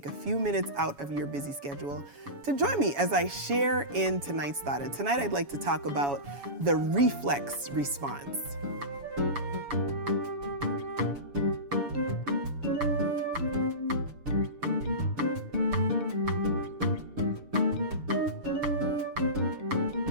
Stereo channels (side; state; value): left; late; 6.8 ms